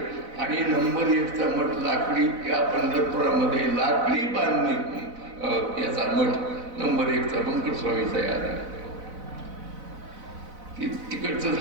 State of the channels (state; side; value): late; left; 4.0 ms